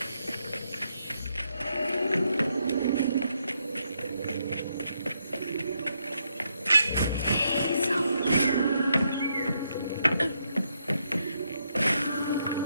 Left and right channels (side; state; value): both; inverted; correlation -0.78